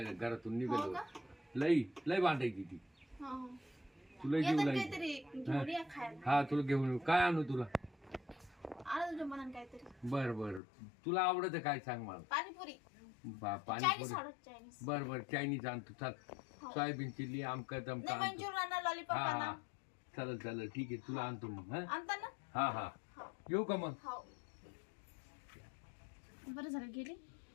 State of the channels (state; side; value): drops out; right; at 10.6 s